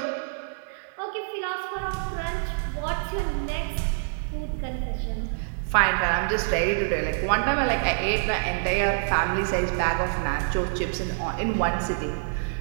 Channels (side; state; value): left; silent; digital silence